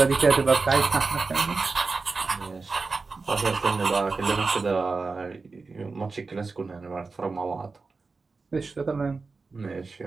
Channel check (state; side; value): quieter; left; 4.2 dB